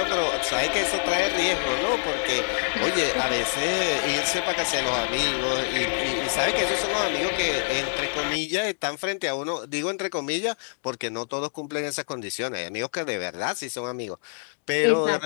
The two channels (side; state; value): right; silent; 61 dB below the other